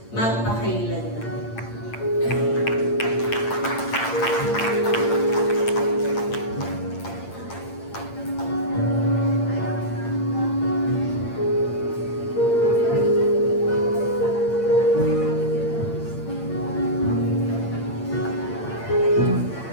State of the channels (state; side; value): late; right; 8.7 ms